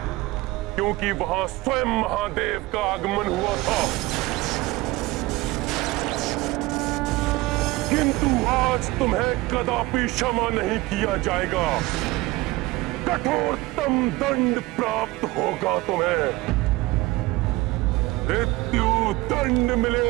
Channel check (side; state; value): left; quieter; 20.2 dB